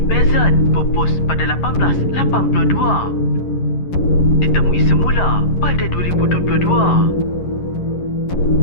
pupus pada 1882. Ditemui semula pada 2022.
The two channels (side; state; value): right; late; 11 ms